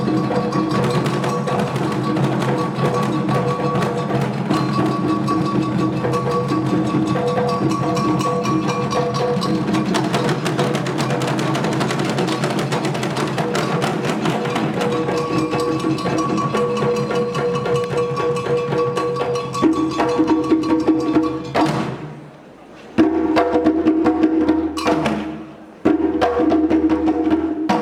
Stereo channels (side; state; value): both; identical; correlation 1.00